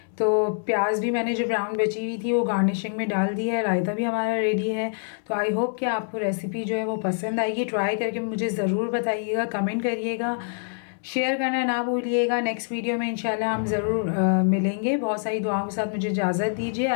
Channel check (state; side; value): silent; right; 62 dB below the other